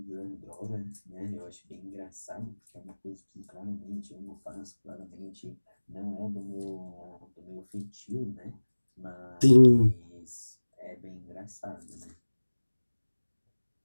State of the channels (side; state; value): both; inverted; correlation -1.00